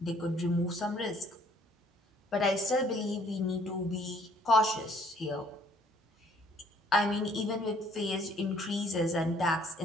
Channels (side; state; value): both; normal; correlation 0.61